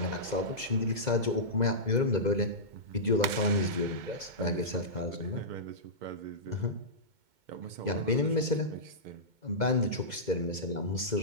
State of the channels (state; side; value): late; left; 2.2 ms